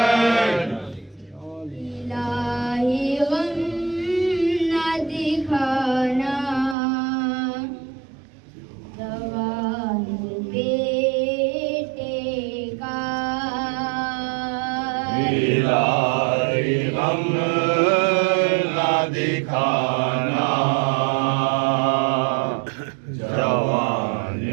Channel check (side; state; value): left; drops out; at 6.8 s